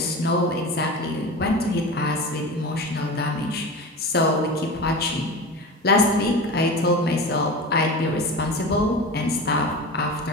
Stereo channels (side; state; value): both; normal; correlation 0.30